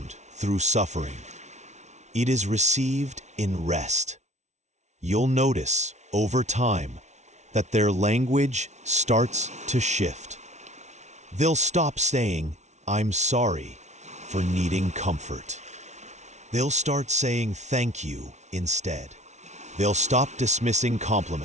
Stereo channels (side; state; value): left; late; 0.33 ms